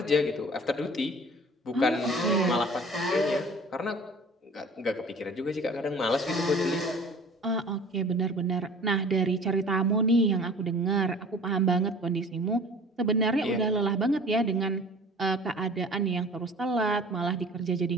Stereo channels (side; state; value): both; normal; correlation 0.45